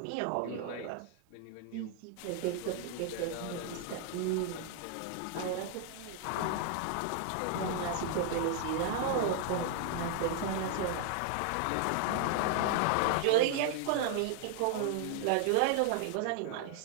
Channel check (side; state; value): both; different; correlation 0.00